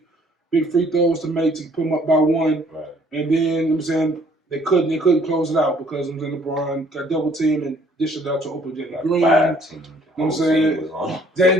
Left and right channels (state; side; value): normal; both; correlation 0.61